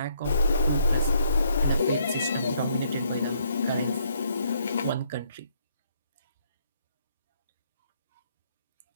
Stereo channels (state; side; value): inverted; both; correlation -0.70